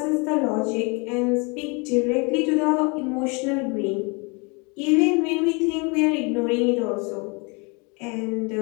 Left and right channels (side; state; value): right; quieter; 30.7 dB